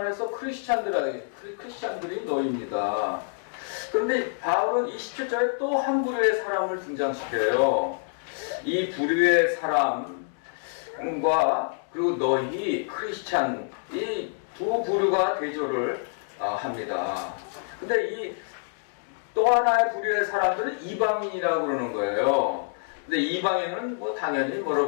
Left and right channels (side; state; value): right; silent; digital silence